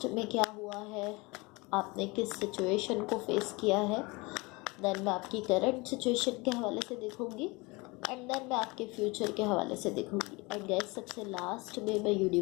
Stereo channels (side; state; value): right; quieter; 25.3 dB